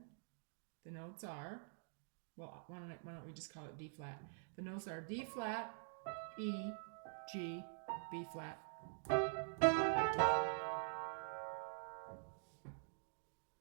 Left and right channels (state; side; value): silent; left; digital silence